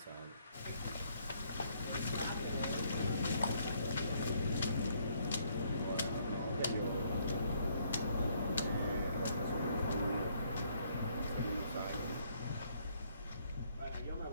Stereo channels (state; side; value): inverted; both; correlation -0.68